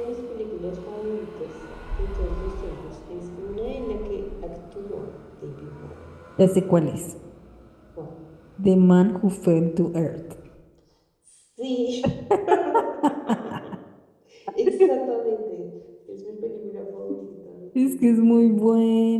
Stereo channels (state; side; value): identical; both; correlation 1.00